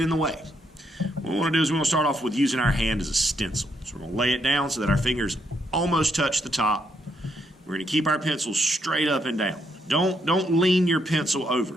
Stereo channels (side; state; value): both; normal; correlation 0.76